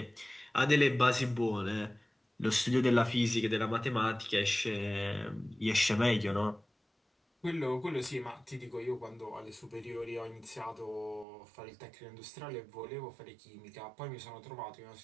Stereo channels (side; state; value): left; drops out; at 11.2 s